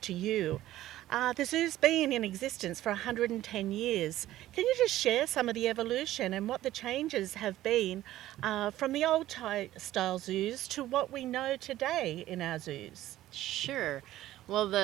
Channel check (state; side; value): quieter; left; 14.5 dB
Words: to you. The zoo's been in existence for 110 years. Can you just share some of the evolution and what the changes have been from the old style zoos to what we know today in our zoos? Sure. Well,